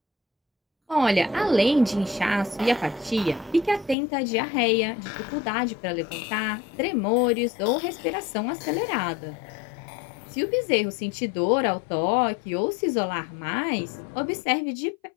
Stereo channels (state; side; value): drops out; right; at 4.0 s